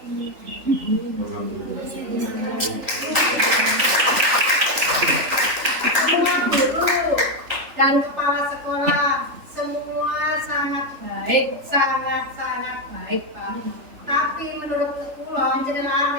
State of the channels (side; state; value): left; late; 3.4 ms